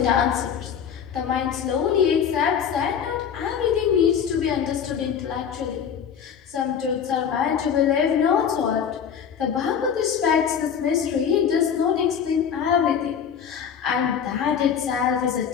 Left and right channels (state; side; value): quieter; right; 7.8 dB